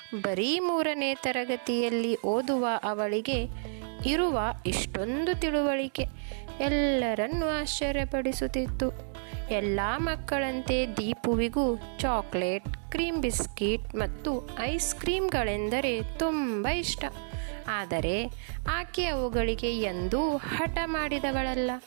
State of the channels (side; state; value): left; silent; digital silence